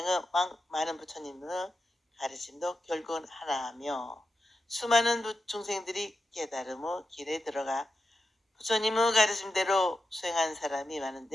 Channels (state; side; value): normal; both; correlation 0.89